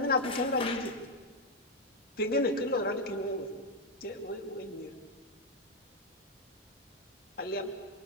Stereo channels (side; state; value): both; normal; correlation 0.03